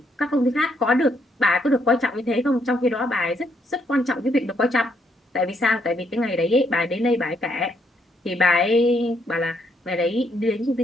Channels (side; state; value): both; normal; correlation 0.73